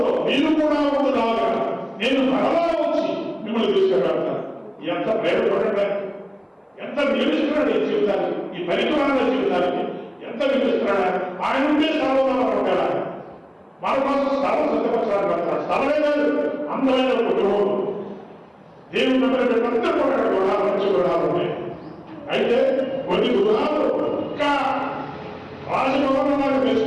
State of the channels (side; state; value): both; identical; correlation 1.00